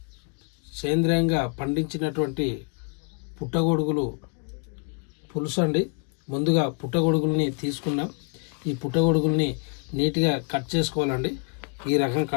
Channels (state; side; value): quieter; right; 39.4 dB